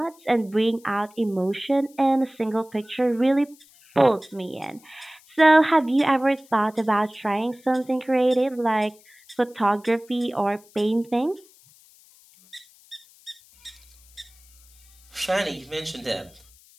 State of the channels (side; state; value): left; noise; hiss, 27 dB below the sound